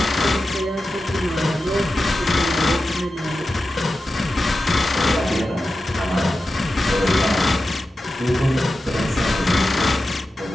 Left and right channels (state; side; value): normal; both; correlation 0.92